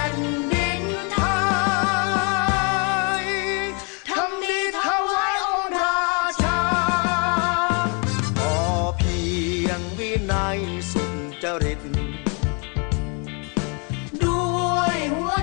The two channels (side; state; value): right; quieter; 35.7 dB